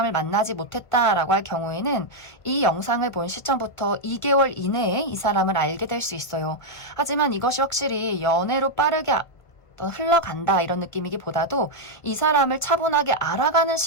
만나지 못했다라고 할 경우에는 이 영상을 본 시점부터 2개월 이내에 이 사람을 알게 될 수 있어요. 하지만 이것이 확실히 연애로 빠르게 흘러간다 이런 느낌이기보다도 이 사람을 차분하게 알아가는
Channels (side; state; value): right; late; 1.4 ms